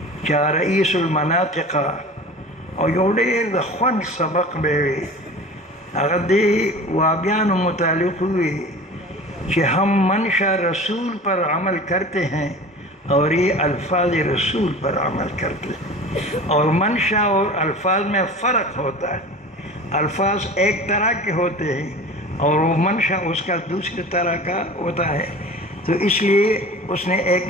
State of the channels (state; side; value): normal; both; correlation 0.38